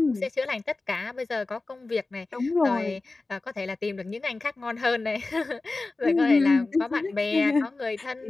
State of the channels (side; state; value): right; quieter; 3.4 dB